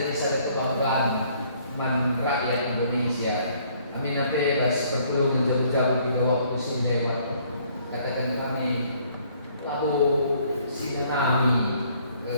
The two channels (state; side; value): inverted; both; correlation -0.62